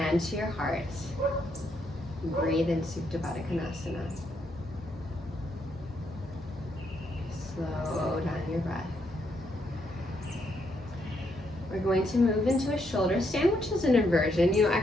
to your heart. Breathe in Supta Baddha Konasana. Slow down your breath. We're going to move into a shoulder stand, which is an inversion.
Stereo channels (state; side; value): normal; both; correlation 0.76